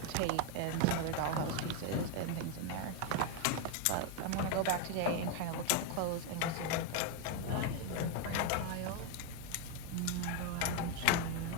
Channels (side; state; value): both; different; correlation 0.01